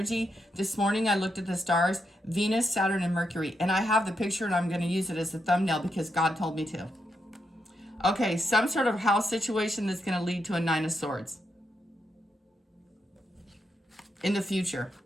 this morning I looked at the stars, Venus, Saturn, and Mercury, and I have the picture and I'm going to use it as a thumbnail because God told me to. Okay, some sort of house situation that's going to lead to a Nine of Swords in the future.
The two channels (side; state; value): both; normal; correlation 0.83